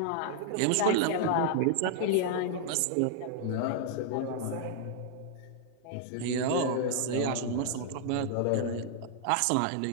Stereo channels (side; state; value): both; different; correlation -0.01